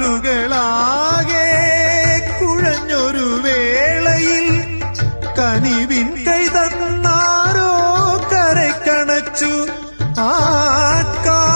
കുഴഞ്ഞൊരു വേളയിൽ കനിവിൻ കൈ തന്നാരോ കരക്കണച്ചു. ആ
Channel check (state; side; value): inverted; both; correlation -1.00